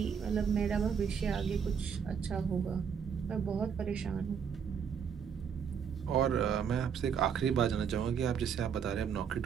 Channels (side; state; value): left; quieter; 7.2 dB